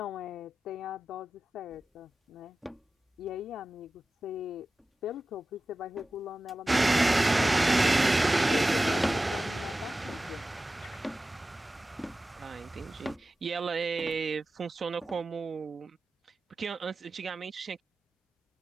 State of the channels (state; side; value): normal; both; correlation 0.95